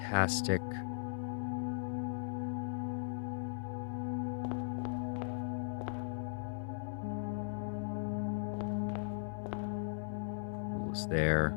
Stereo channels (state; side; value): silent; right; 52 dB below the other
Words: Pool is there.